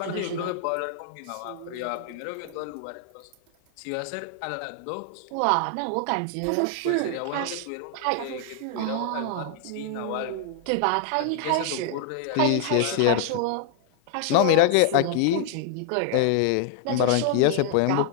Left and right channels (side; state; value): both; different; correlation 0.00